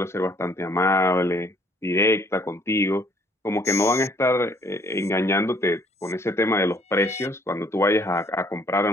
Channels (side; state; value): both; normal; correlation 0.62